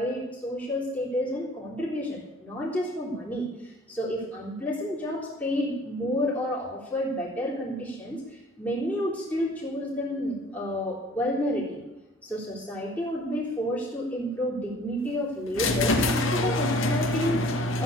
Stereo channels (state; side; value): normal; both; correlation 0.52